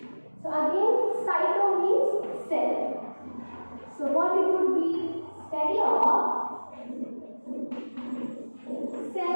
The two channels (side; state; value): both; inverted; correlation -1.00